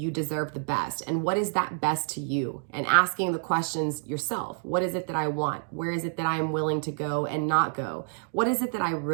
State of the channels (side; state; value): left; silent; digital silence